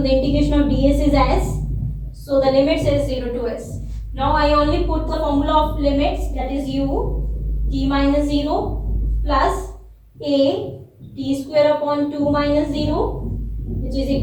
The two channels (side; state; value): both; identical; correlation 1.00